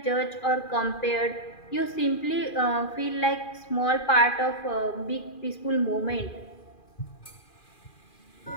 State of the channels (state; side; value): late; right; 2.4 ms